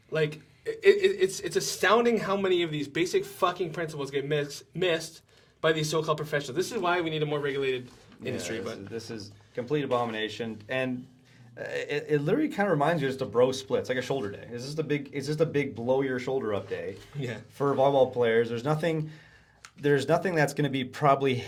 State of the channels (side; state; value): both; identical; correlation 1.00